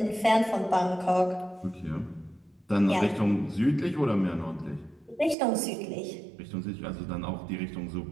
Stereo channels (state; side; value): drops out; left; at 5.4 s